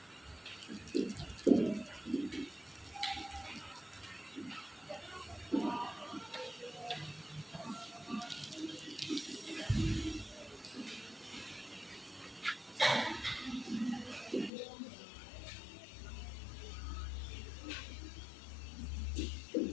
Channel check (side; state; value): right; drops out; at 14.5 s